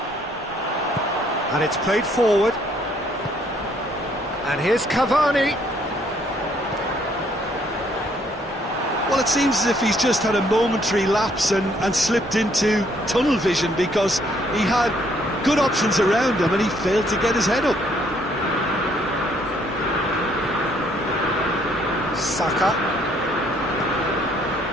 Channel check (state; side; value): normal; both; correlation 0.66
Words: And it's played forward. And here's Cavani. Well, it seems as if he's just had a momentary lapse and slipped into tunnel vision, because he had good options around him and he failed to get his head up. Saka.